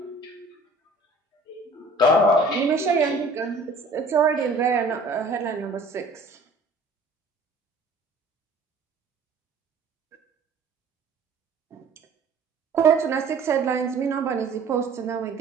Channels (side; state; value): left; quieter; 3.2 dB